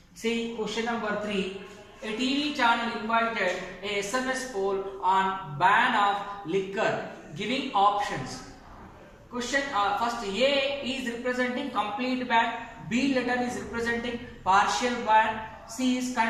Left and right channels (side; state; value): both; identical; correlation 1.00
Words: See question number 3. A TV channel invited a SMS poll on ban of liquor, giving options. Question first, A is representing complete ban, B letter is representing partial ban, C is